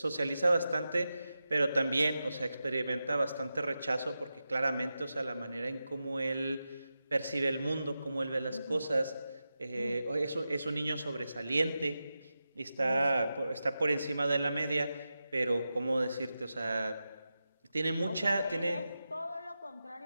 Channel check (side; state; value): both; inverted; correlation -0.91